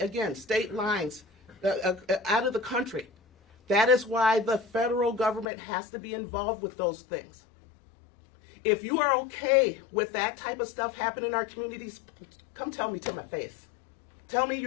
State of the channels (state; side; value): drops out; right; at 5.5 s